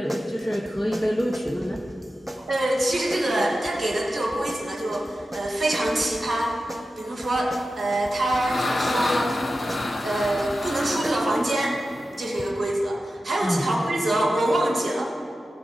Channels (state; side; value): normal; both; correlation 0.92